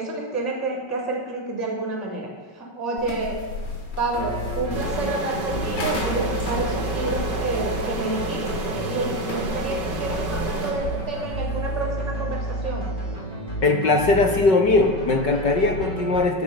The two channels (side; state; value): right; late; 5.3 ms